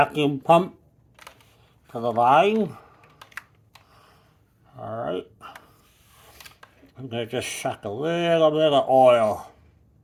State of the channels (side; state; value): both; identical; correlation 1.00